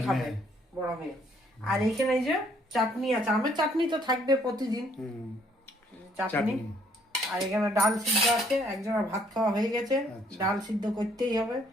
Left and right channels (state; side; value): normal; both; correlation 0.65